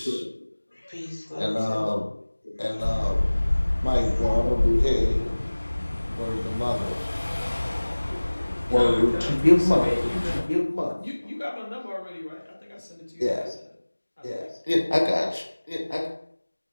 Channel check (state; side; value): inverted; both; correlation -1.00